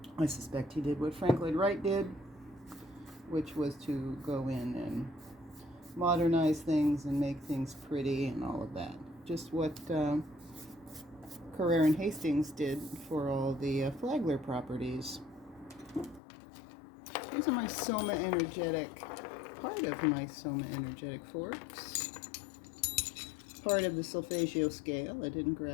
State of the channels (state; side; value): drops out; right; at 16.2 s